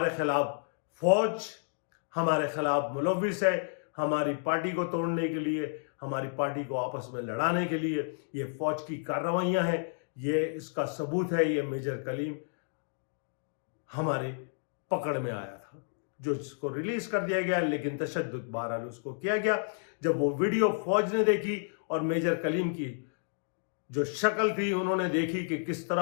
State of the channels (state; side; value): silent; right; digital silence